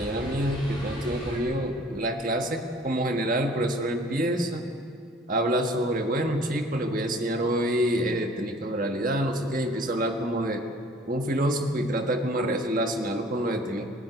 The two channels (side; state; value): both; normal; correlation 0.52